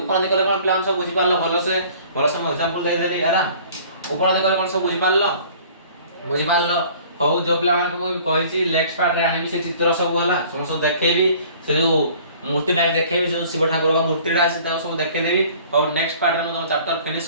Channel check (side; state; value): both; inverted; correlation -0.51